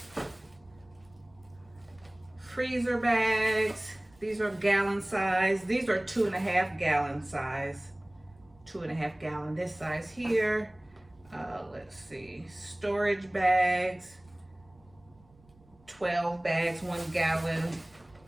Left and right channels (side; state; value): right; noise; rumble, 29 dB below the sound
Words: freezer bags. These are gallon size. These are 2.5 gallon size. 2.5 gallon, this size here. Let's see, storage bags, 12 bags, 1 gallon.